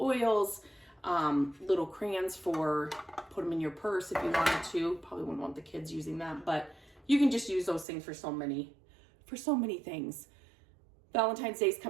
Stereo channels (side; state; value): left; drops out; at 7.9 s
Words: little crayons put them in your purse if you wanted to. Probably wouldn't want the kids using that, but you can just use those things for so many things. Valentine's Day is